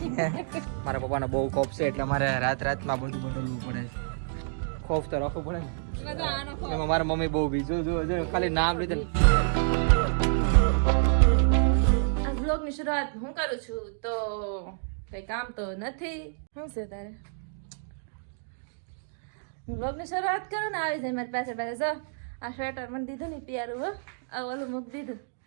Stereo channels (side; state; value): left; silent; digital silence